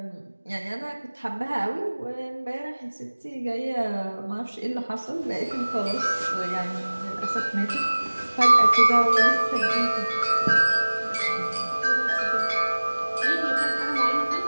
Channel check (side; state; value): both; inverted; correlation -1.00